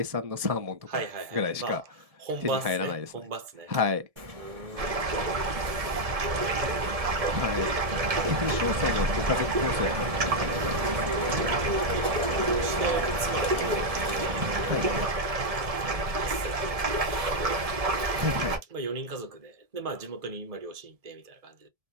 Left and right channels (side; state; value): left; late; 1.7 ms